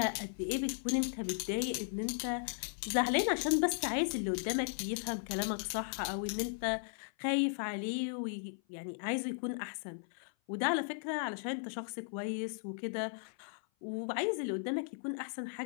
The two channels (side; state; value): right; silent; 53 dB below the other